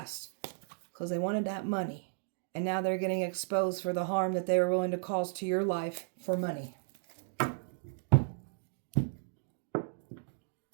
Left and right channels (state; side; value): silent; left; digital silence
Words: because they wanted that money. And now they're getting exposed for the harm that they were willing to cause to your life for money.